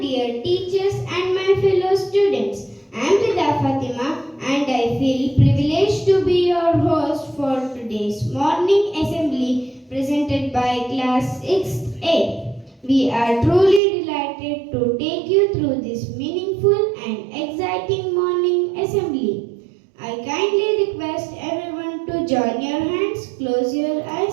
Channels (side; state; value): left; drops out; at 13.8 s